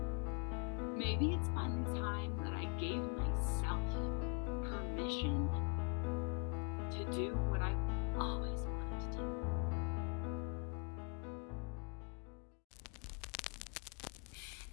Maybe it's finally time that I gave myself permission to do what I've always wanted to do.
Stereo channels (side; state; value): right; quieter; 35.6 dB